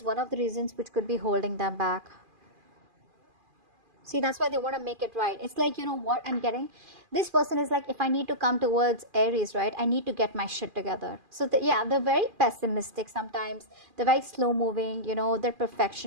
one of the reasons which could be holding them back. See, that's why they want to make it right. It's like, you know what I'm getting? This person is like, if I need to come towards Aries, right, I need to get my shit together. So, yeah, they're very pessimistic sometimes. They're very slow moving, you know, they're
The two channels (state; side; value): late; left; 2.4 ms